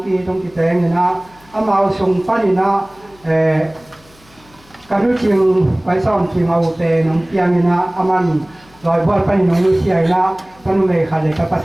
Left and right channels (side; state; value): left; noise; hum, 28 dB below the sound